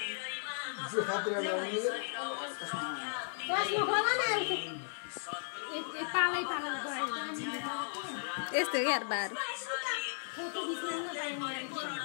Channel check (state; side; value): silent; right; digital silence